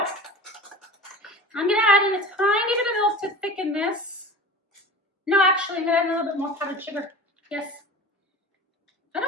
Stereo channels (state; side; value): normal; both; correlation 0.36